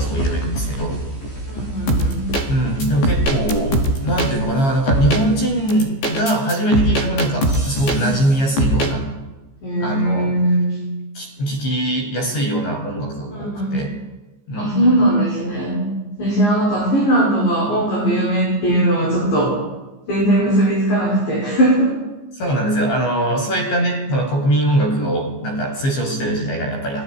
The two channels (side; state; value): right; late; 15 ms